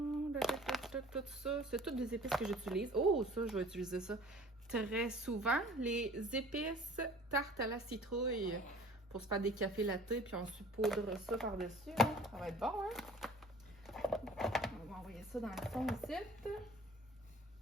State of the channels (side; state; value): both; normal; correlation 0.47